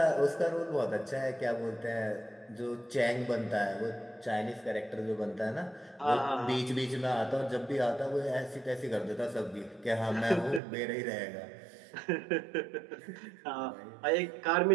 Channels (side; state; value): left; drops out; at 10.6 s